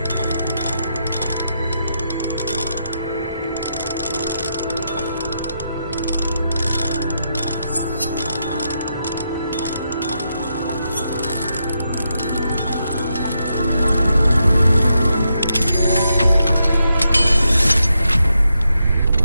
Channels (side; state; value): both; inverted; correlation -0.83